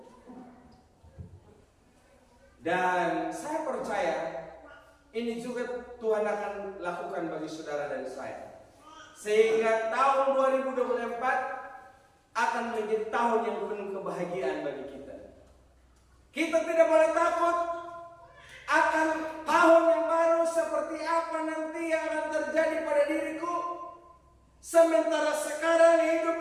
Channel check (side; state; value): both; identical; correlation 1.00